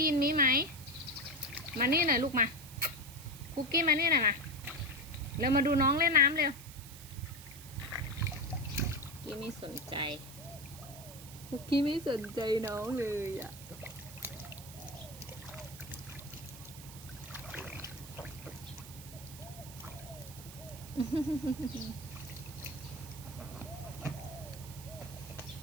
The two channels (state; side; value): noise; right; hiss, 15 dB below the sound